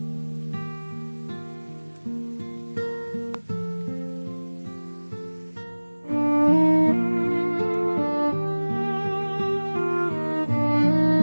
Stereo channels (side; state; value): both; inverted; correlation -1.00